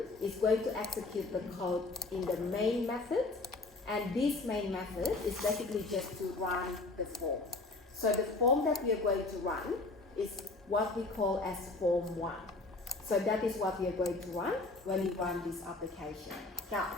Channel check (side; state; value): right; quieter; 3.4 dB